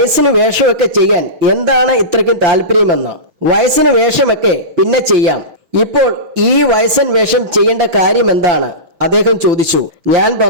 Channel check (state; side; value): late; left; 5.8 ms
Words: വേഷമൊക്കെ ചെയ്യാൻ എന്താണ് ഇത്രയ്ക്കും താല്പര്യമെന്ന്. വയസ്സിന് വേഷമൊക്കെ പിന്നെ ചെയ്യാം, ഇപ്പോൾ ഈ വയസ്സൻ വേഷം ചെയ്യേണ്ട കാര്യം എന്താണ്? അദ്ദേഹം ചോദിച്ചു. ഞാൻ